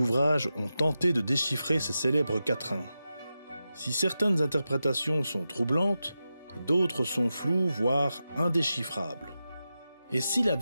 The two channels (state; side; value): inverted; both; correlation -0.91